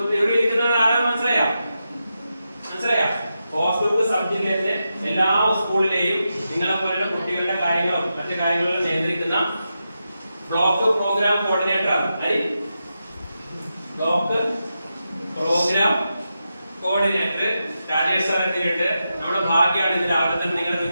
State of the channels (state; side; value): inverted; both; correlation -0.88